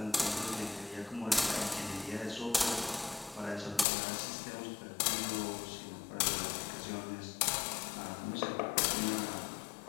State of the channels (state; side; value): drops out; right; at 3.9 s